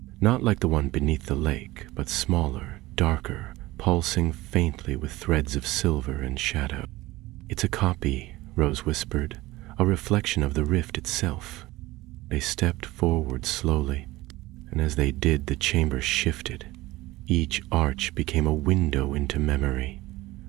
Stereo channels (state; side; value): quieter; left; 19.0 dB